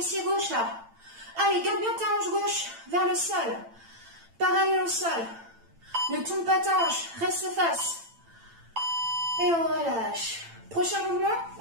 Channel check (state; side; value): late; left; 8.9 ms